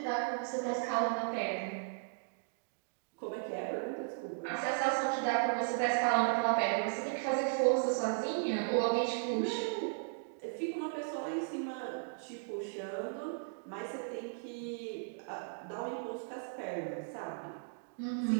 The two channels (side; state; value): left; silent; digital silence